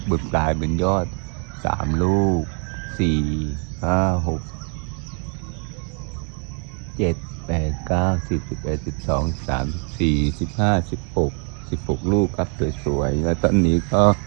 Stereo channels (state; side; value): quieter; left; 38.8 dB